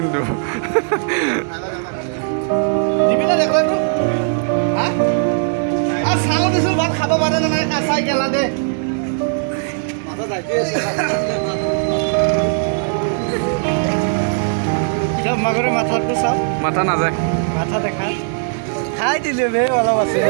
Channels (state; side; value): silent; left; digital silence